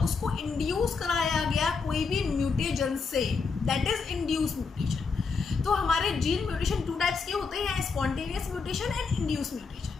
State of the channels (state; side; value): quieter; right; 4.9 dB